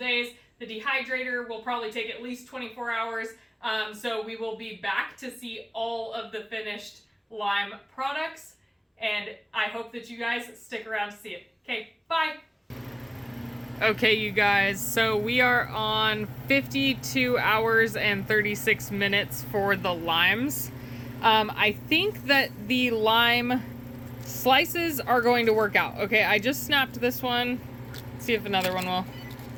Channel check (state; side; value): identical; both; correlation 1.00